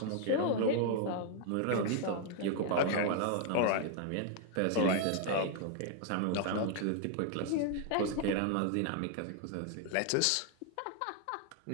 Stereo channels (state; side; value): different; both; correlation 0.00